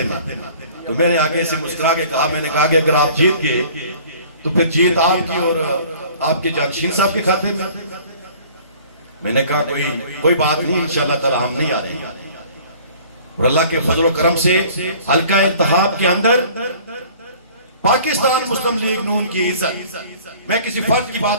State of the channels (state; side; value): inverted; both; correlation -0.50